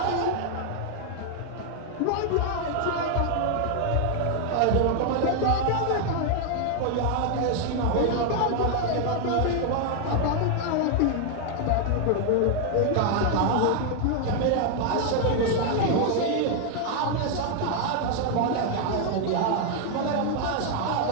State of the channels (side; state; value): both; different; correlation 0.00